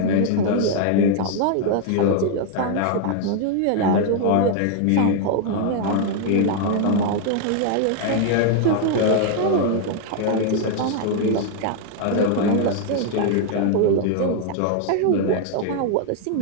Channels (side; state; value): both; different; correlation 0.00